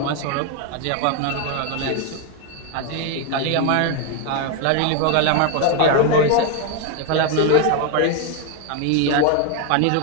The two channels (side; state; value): both; different; correlation 0.01